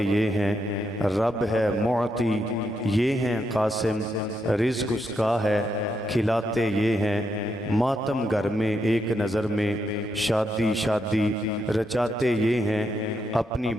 یہ ہیں، رب ہے معطی یہ ہیں قاسم، رزق اس کا ہے کھلاتے یہ ہیں، ماتم گھر میں ایک نظر میں شادی شادی رچاتے یہ ہیں، اپنی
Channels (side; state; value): both; normal; correlation 0.80